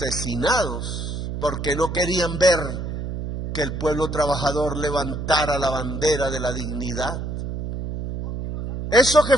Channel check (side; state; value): right; noise; hum, 5 dB below the sound